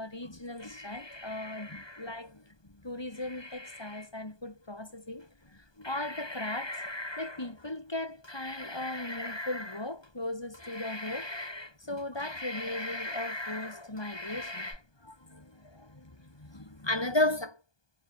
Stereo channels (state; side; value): late; right; 1.2 ms